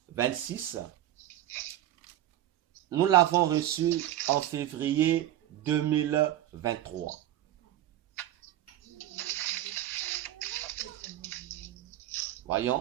nous l'avons reçu en février 2023.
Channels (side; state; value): left; quieter; 13.1 dB